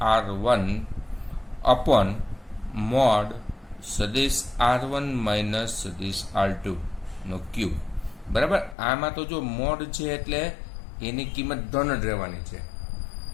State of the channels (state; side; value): drops out; right; at 8.8 s